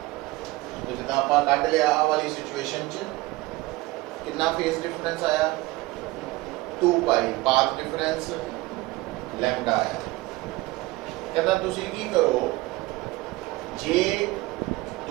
ਜਿੱਦਾਂ ਆਪਾਂ ਕੱਢ ਲਿਆ ਆ ਵਾਲੀ ਸਿਚੁਏਸ਼ਨ 'ਚ ਕਿੰਨਾ ਫੇਜ਼ ਡਿਫਰੈਂਸ ਆਇਆ 2 ਪਾਈ, ਪਾਥ ਡਿਫਰੈਂਸ ਲੈਮਡਾ ਆਇਆ। ਕਹਿੰਦਾ ਤੁਸੀਂ ਕੀ ਕਰੋ, ਜੇ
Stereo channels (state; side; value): quieter; left; 20.3 dB